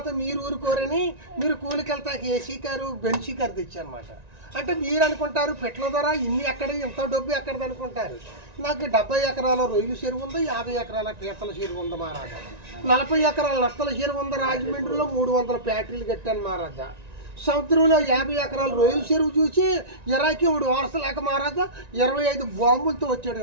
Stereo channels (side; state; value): left; late; 1.9 ms